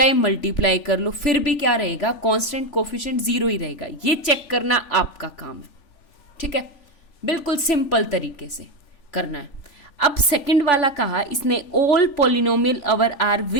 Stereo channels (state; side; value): late; right; 3.4 ms